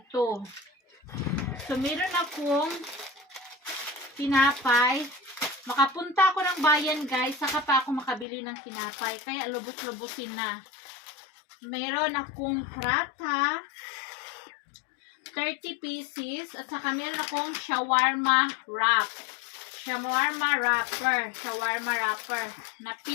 So, meron akong tinapay. Makapunta ako ng bayan, guys. Saka pa ako makabili ng tinapay. Kaya lubos-lubusin na. Meron akong prata. 30 pieces. At saka meron akong shawarma wrap. Shawarma wrapper. Na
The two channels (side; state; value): right; drops out; at 8.2 s